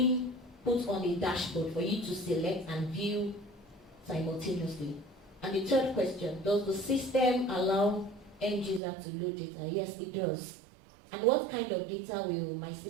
put on a dashboard for you to select and view simultaneously. And the third question, does the system allow end user to load data? Yes, it does. And what kind of data will my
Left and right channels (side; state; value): left; drops out; at 8.8 s